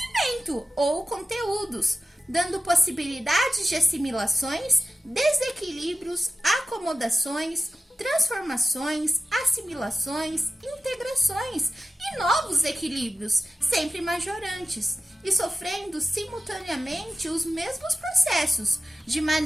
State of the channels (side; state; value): both; normal; correlation 0.92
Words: ou conteúdos, dando possibilidades de assimilações, desequilíbrios, acomodações, transformações, assimilações, integrações e novos equilíbrios, sempre majorantes, e sofrendo simultaneamente os mesmos processos, de